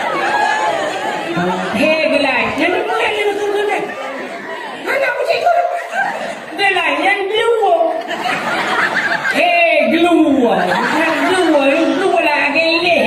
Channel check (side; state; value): both; identical; correlation 1.00